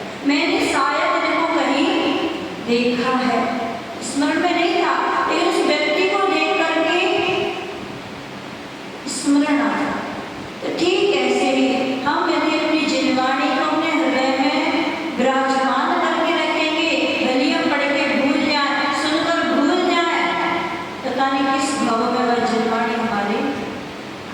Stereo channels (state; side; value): identical; both; correlation 1.00